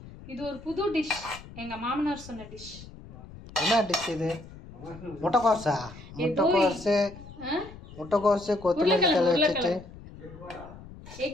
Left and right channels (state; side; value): noise; left; rumble, 17 dB below the sound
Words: இது ஒரு புது டிஷ், எங்க மாமனார் சொன்ன டிஷ். என்ன டிஷ் இது? முட்டைக்கோஸா? முட்டைக்கோசு கொத்தமல்லி தழை வச்சுட்டு